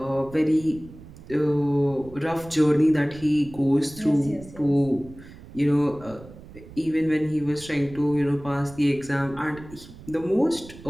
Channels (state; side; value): noise; right; rumble, 18 dB below the sound